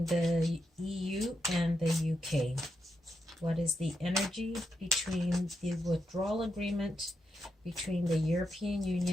the EU and the UK? What is the energy between the withdrawal agreement between the European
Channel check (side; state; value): both; normal; correlation 0.84